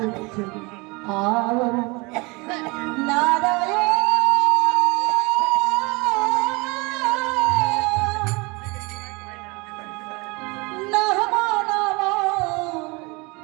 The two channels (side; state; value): left; quieter; 26.8 dB